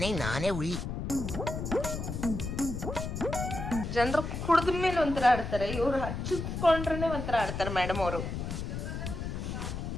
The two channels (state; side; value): noise; left; rumble, 4 dB below the sound